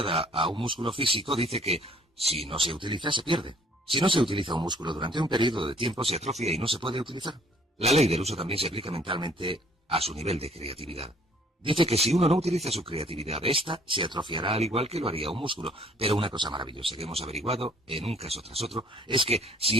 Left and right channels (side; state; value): both; normal; correlation 0.59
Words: a un músculo físico dice que, si no se utiliza, se pierde. Si no se utiliza un músculo durante un periodo de tiempo, se atrofia y no se puede utilizar. La ley del uso también se aplica mentalmente a su nivel de creatividad. Dice que si uno no utiliza su creatividad, esta se atrofiará al igual que lo haría un músculo. Pero una cosa maravillosa que hemos averiguado, en un caso tras otro, es que